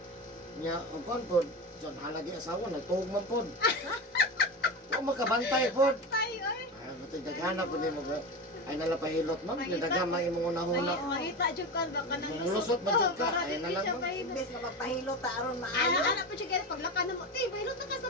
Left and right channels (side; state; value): both; normal; correlation 0.23